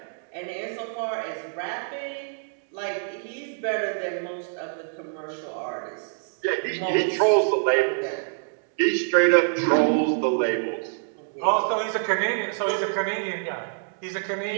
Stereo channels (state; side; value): silent; left; digital silence